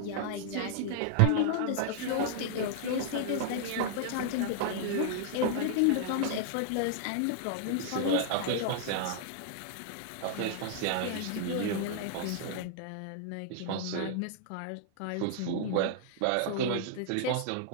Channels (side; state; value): both; different; correlation -0.01